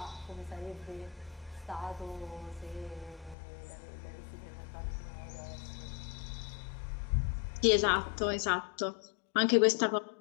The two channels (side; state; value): right; drops out; at 3.4 s